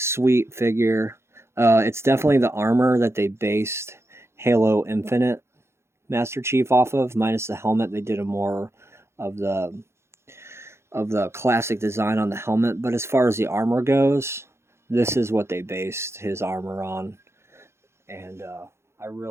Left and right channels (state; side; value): late; left; 0.13 ms